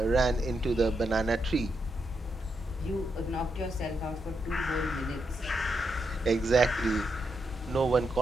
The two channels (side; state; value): both; normal; correlation 0.82